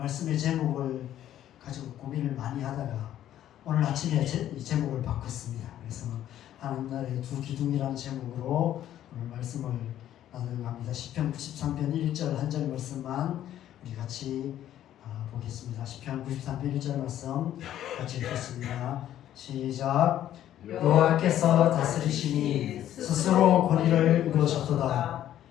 제목을 가지고 고민을 많이 하다가 오늘 아침에 이 제목을 바꿨습니다. 그래서 하나님 나라의 두 기둥이라는 제목으로 오늘 말씀을 나누려고 합니다. 시편 93편 1절 한 절 말씀만 우리 같이 보겠습니다. 시편 93편 1절 말씀 같이 읽겠습니다. 시작. 여호와께서 다스리시니 스스로 권위를 이루셨도다.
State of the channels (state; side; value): quieter; right; 11.8 dB